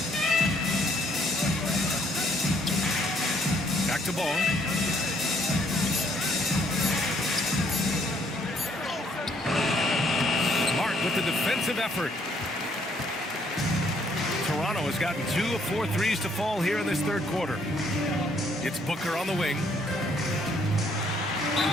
Back to Ball. Smart with the defensive effort. Toronto has gotten 2 of 4 threes to fall here in this third quarter. It's Booker on the wing.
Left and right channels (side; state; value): both; normal; correlation 0.67